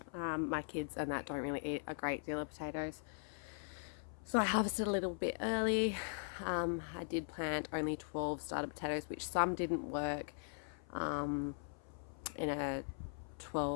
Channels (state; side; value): silent; right; 51 dB below the other